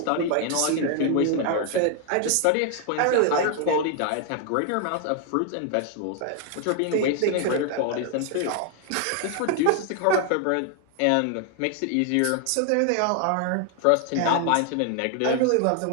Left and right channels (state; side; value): different; both; correlation 0.00